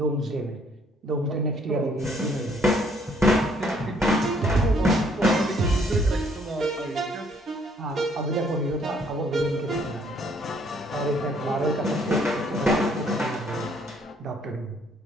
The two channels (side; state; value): both; normal; correlation 0.65